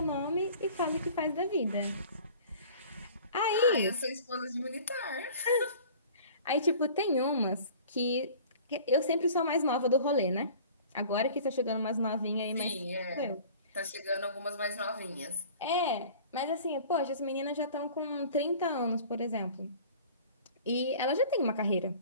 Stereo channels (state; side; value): inverted; both; correlation -0.45